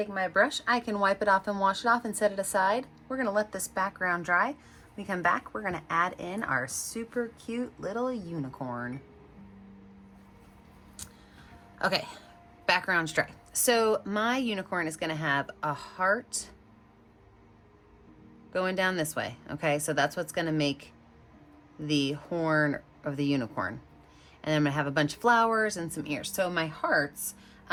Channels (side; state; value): both; identical; correlation 1.00